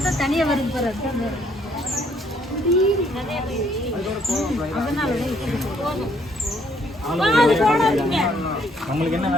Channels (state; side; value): normal; both; correlation 0.67